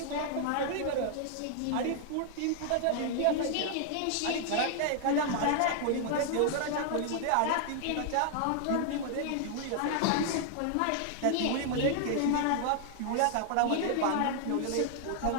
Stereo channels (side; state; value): both; different; correlation 0.00